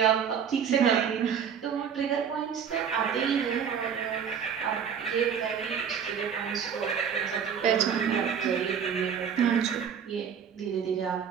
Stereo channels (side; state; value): left; quieter; 7.6 dB